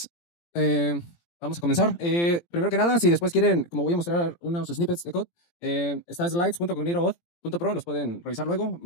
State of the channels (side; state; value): right; late; 17 ms